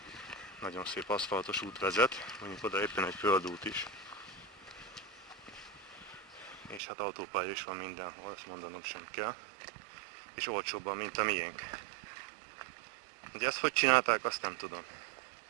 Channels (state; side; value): drops out; left; at 6.8 s